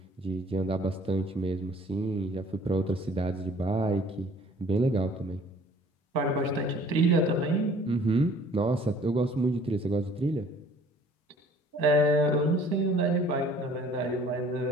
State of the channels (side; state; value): both; normal; correlation 0.54